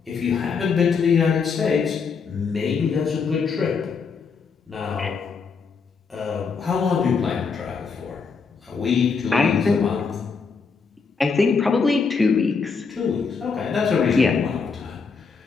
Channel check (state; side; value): quieter; right; 5.3 dB